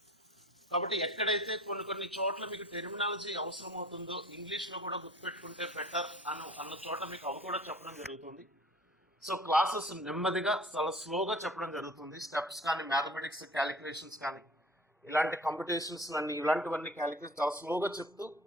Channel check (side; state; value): both; normal; correlation 0.45